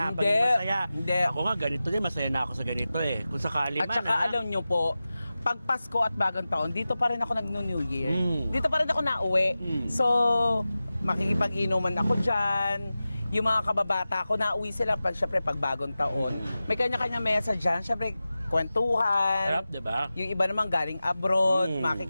Hindi. Pagiging masaya. Hindi. Ako nga, ganito din, masaya na ako sa ganito eh. Kung sakali At man, saka alam nyo po, pag Pasko at Bagong Taon, dito pa rin ako nag-New Year. Dito pa rin ako nauwi. So, makikipag-inuman ako dyan. Yung mga kababata ko, nauwi sila syempre pag Bagong Taon. May kanya-kanya mesa dyan. Syempre, kwentuhan. sarap, diba? Yung iba naman galing abroad,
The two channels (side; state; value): both; inverted; correlation -0.95